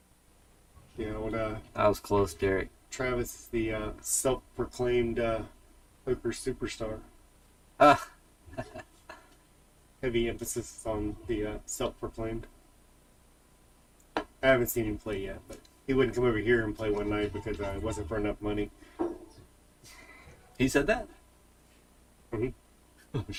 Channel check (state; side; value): identical; both; correlation 1.00